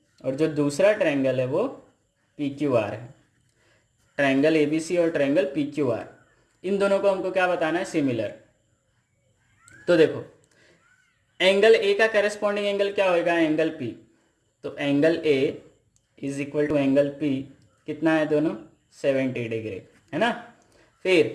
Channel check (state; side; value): identical; both; correlation 1.00